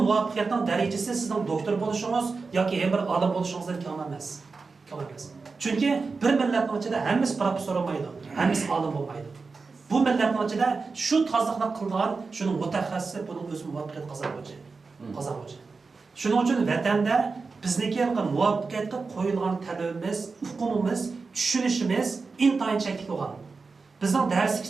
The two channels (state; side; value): quieter; left; 4.4 dB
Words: muvaffaqiyatning darajasi sizning doktor bo'lishingiz yoki ham bir olim bo'lishingizdan kam emas. Kam emas. Chunki bir millatning ichida hammasi professor bo'lmaydi, hammasi olim bo'lmaydi. Bu millatning ichida shu tozliqni qilgan, shuning mutaxassisi buning o'z muvaffaqiyat qozonuvchi. Shuning uchun vatanda bizniki muvaffaqiyatga qo'yilgan talabimiz, huquqimiz, tushunishimiz intayin cheklik bo'lgan. Bizning dars